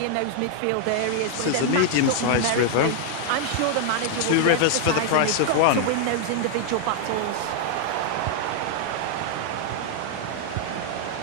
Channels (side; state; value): both; different; correlation 0.00